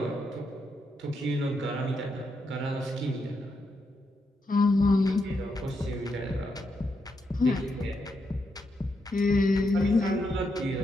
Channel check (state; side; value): normal; both; correlation 0.82